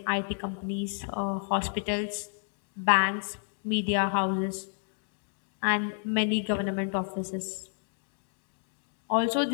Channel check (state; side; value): silent; right; digital silence